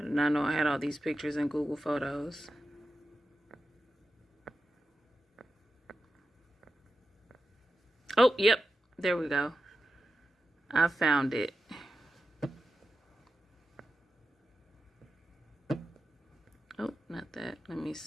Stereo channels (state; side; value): normal; both; correlation 0.91